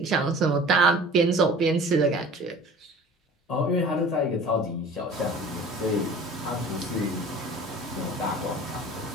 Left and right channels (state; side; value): normal; both; correlation 0.43